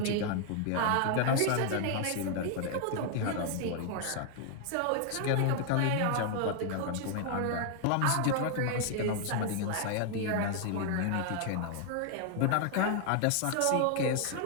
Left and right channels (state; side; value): different; both; correlation 0.00